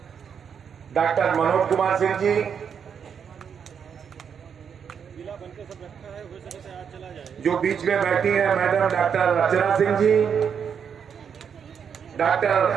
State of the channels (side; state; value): left; quieter; 7.2 dB